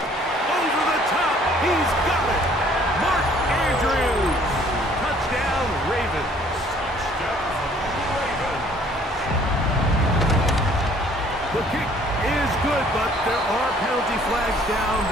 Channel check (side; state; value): both; normal; correlation 0.58